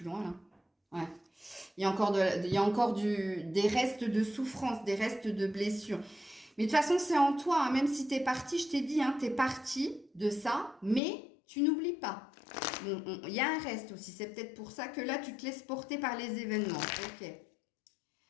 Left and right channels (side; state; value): right; drops out; at 11.0 s